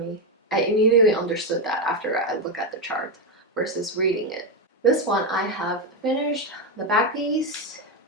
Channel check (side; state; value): both; normal; correlation 0.08